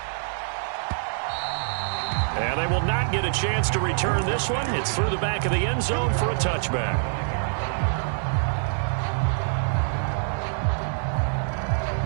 And they will not get a chance to return this one. It's through the back of the end zone for a touchback.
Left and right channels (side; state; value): left; silent; 61 dB below the other